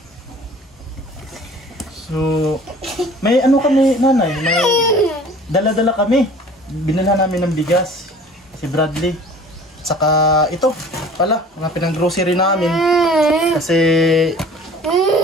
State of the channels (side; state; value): both; normal; correlation 0.47